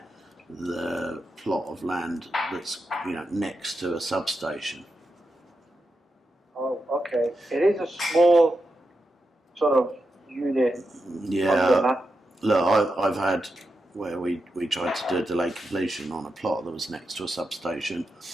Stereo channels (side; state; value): both; normal; correlation 0.87